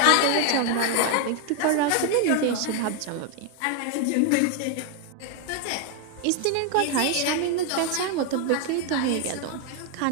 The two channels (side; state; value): both; different; correlation 0.00